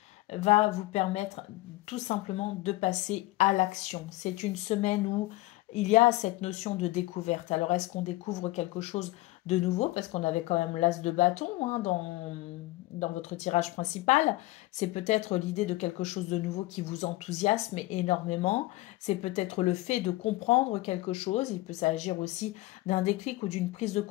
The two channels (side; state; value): right; quieter; 19.0 dB